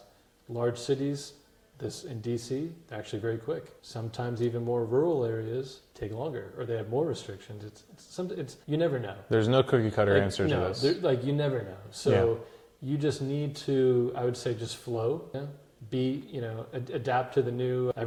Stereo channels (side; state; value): both; identical; correlation 1.00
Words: Large cities, this in DC, they're actually very quick. Sometimes even more rural areas take longer, or they have more restrictions. It's you never know. There's no cookie cutter answer to this. You never know. So you just need to, I would say, just flow. Adapt to the new.